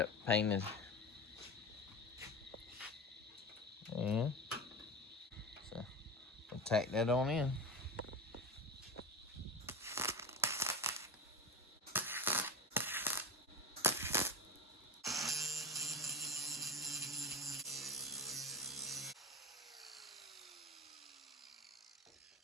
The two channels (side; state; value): both; normal; correlation 0.25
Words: painted. And so we'll tack that on in.